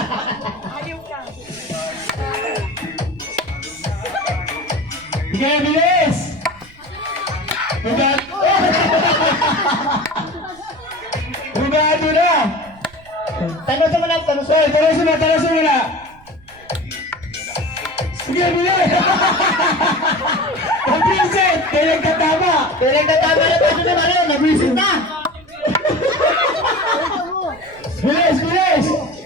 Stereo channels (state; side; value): noise; right; rumble, 25 dB below the sound